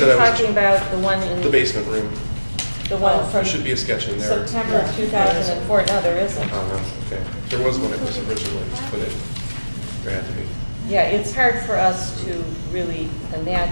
I talking was, about the one in? the basement room. The one There from should be a sketch in there. September of 2004? No, there isn't. Oh, no, okay. There was one that was originally put in. There had to be. Yeah, it's hard for us to really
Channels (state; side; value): inverted; both; correlation -1.00